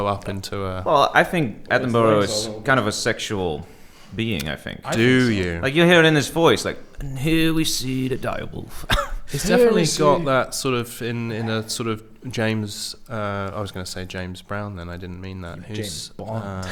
up into a... Well, I think Attenborough is kind of a sexual being, I think. Do you? Like you hear it in his voice, like, and here we see the direwolf. He's definitely got that sort of in a sort of James. I was going to say James Brown. Then I didn't mean that. Who's?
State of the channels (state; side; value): identical; both; correlation 1.00